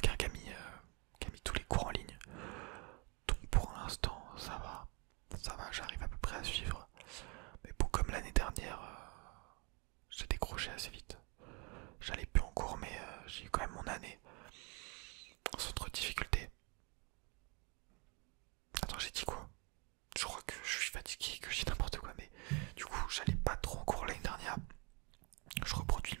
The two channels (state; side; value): quieter; left; 31.2 dB